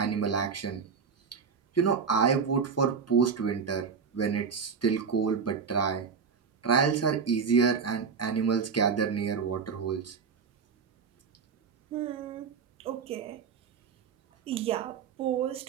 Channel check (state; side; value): quieter; left; 6.0 dB